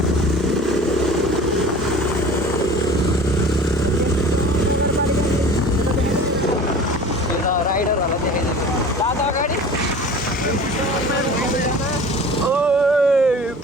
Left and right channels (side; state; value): both; normal; correlation 0.41